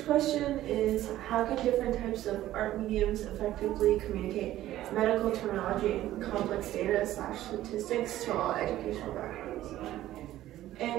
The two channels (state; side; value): quieter; left; 14.0 dB